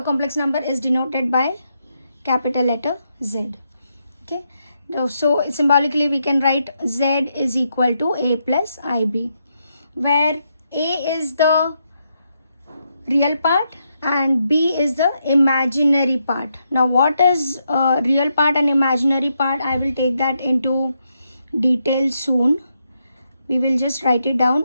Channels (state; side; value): inverted; both; correlation -0.81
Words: complex number is denoted by capital letter Z. Okay, so symbolically we can write Z is equal to a plus ib, where a is the real part and b is the imaginary part. Now what is real part and imaginary part, I will take that into detail soon. We will just write it